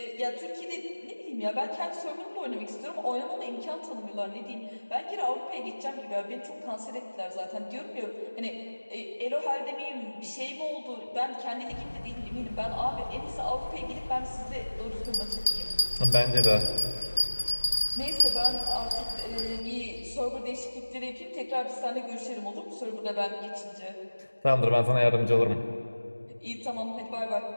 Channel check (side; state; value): both; inverted; correlation -1.00